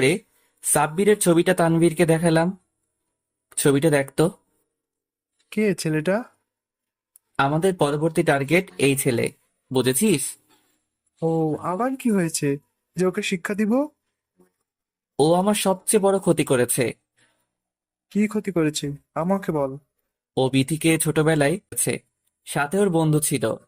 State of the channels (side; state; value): both; identical; correlation 1.00